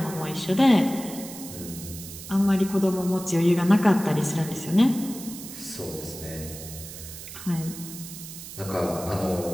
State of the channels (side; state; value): right; noise; hiss, 12 dB below the sound